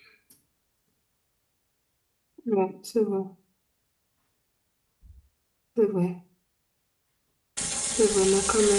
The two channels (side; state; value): both; identical; correlation 1.00